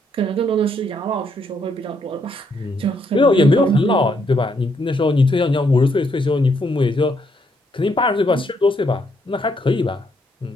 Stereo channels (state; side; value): normal; both; correlation 0.74